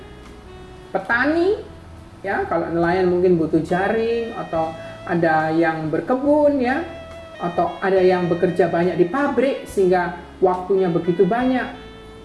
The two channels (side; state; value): both; identical; correlation 1.00